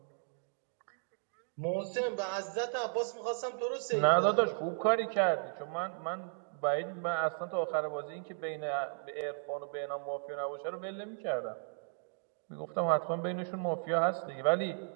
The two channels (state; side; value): silent; left; digital silence